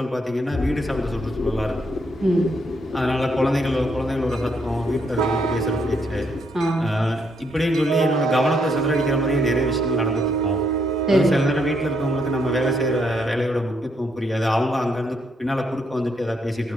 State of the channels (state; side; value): normal; both; correlation 0.75